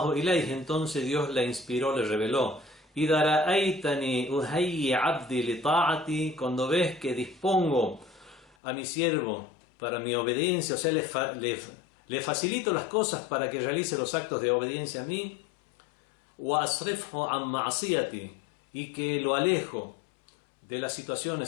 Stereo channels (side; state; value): right; drops out; at 8.6 s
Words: ilayhi, entonces Dios le inspiró, le reveló إذا رأيتني أهيئ عبدي لطاعتي, cuando ves que dispongo a mi siervo para mi obediencia, o sea, le facilito las cosas para que realice los actos de obediencia a mí, وأصرفه عن معصيتي, y que lo alejo de las